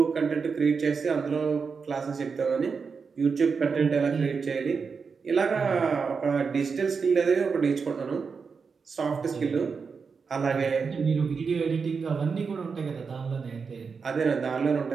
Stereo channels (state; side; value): quieter; left; 5.4 dB